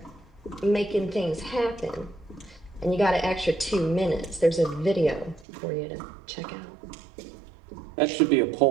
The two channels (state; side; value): drops out; left; at 5.5 s